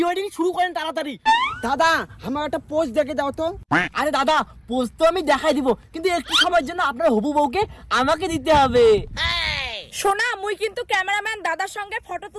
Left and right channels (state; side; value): identical; both; correlation 1.00